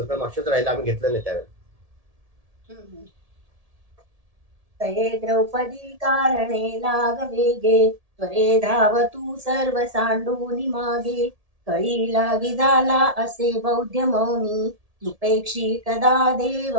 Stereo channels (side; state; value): left; late; 1.7 ms